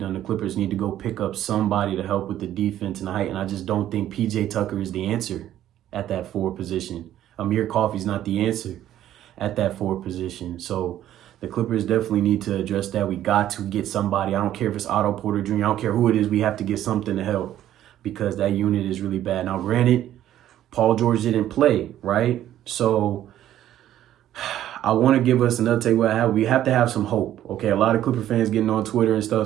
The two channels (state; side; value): quieter; left; 12.2 dB